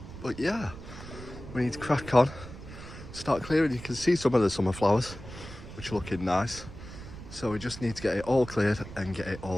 But yeah, we need to crack on, start clearing. You can see some of the summer flowers, which are looking nice. So we just need to get it all cleared and get it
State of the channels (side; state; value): right; noise; rumble, 13 dB below the sound